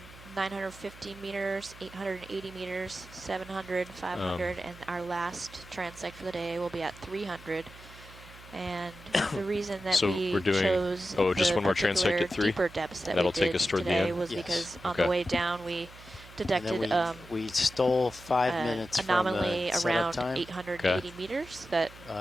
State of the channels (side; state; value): right; noise; hum, 19 dB below the sound